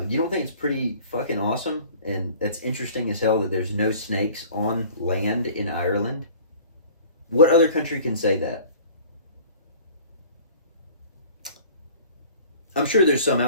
you don't think it's pretty fucking awesome? And that's interesting as hell that there's no snakes on land in Ireland? What other country can say that? I'm sure there's some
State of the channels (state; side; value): inverted; both; correlation -0.47